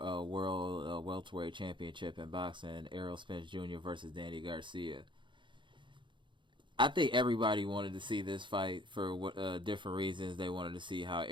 World Welterweight Championship in boxing. Errol Spence Jr. versus Danny Garcia. I think everybody wanted to see this fight for different reasons. They wanted to see how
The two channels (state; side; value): late; left; 0.23 ms